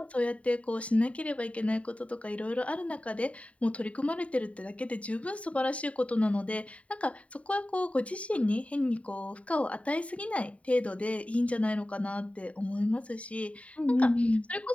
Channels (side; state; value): right; late; 0.066 ms